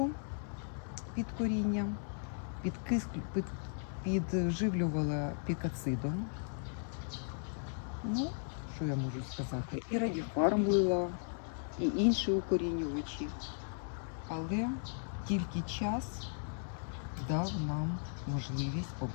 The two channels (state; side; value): silent; right; digital silence